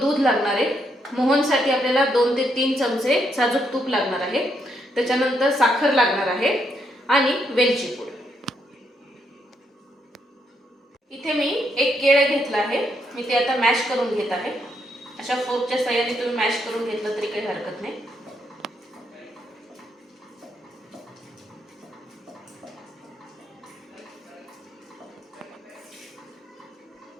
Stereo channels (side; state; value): both; normal; correlation 0.77